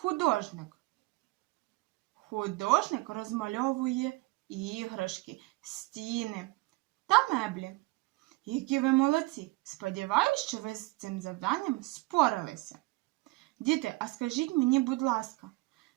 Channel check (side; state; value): left; quieter; 21.9 dB